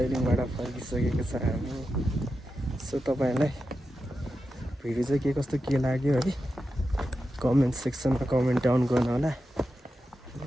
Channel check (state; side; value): normal; both; correlation 0.90